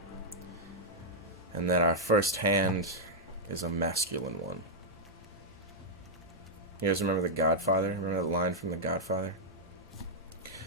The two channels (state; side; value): normal; both; correlation -0.06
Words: And then our first hand is a masculine one. You guys remember The Godfather? Remember that line from The Godfather?